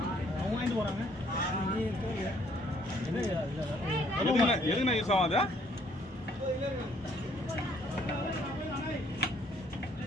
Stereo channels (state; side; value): normal; both; correlation 0.64